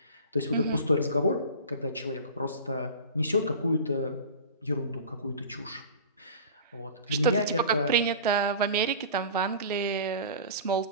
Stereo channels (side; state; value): both; inverted; correlation -0.37